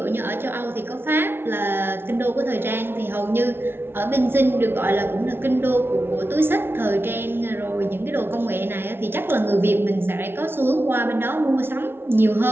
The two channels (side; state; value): left; late; 0.11 ms